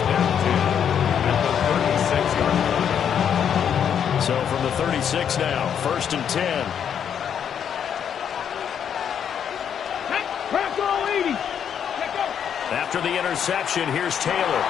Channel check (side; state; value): right; quieter; 8.4 dB